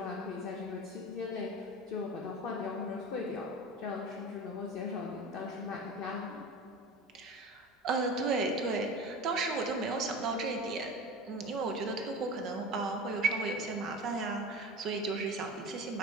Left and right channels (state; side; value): normal; both; correlation 0.33